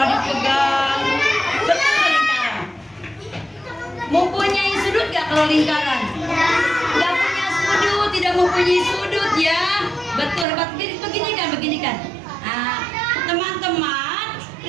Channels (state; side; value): drops out; left; at 10.5 s